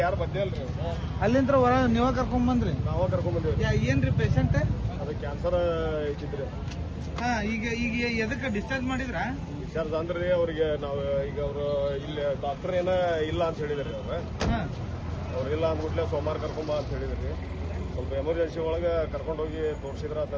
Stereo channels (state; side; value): identical; both; correlation 1.00